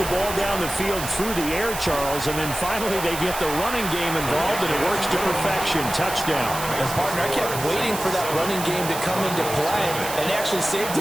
ball down the field through the air, Charles, and then finally they get the running game involved, and it works to perfection. Touchdown. And, partner, I kept waiting for that running game to come into play and actually saved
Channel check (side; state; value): right; noise; hiss, 8 dB below the sound